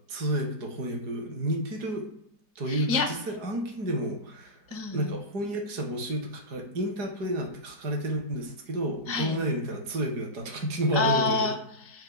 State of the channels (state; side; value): late; left; 4.8 ms